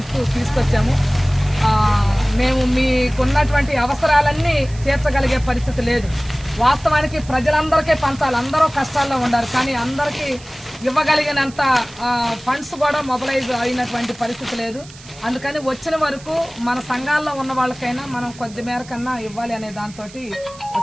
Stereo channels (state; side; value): noise; right; hiss, 20 dB below the sound